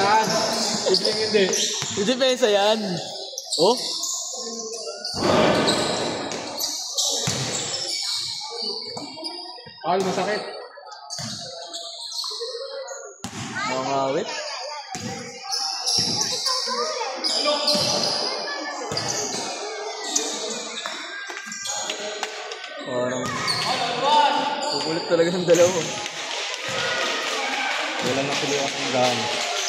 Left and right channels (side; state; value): both; identical; correlation 1.00